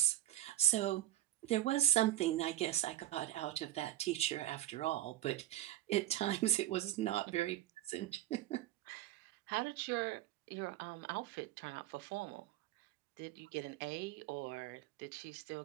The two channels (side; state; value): left; quieter; 13.7 dB